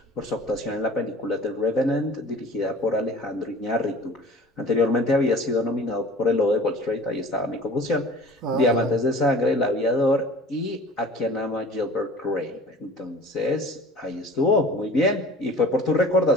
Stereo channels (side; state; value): both; normal; correlation 0.44